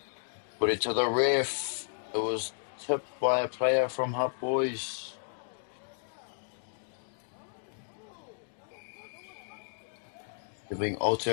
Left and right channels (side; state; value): right; silent; digital silence